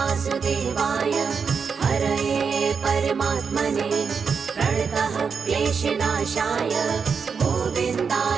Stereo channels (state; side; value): quieter; left; 5.9 dB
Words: हरये परमात्मने प्रणतः क्लेशनाशाय